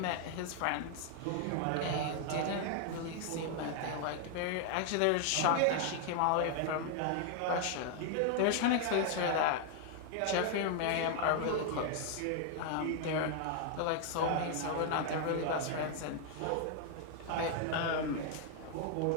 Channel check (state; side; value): different; both; correlation 0.00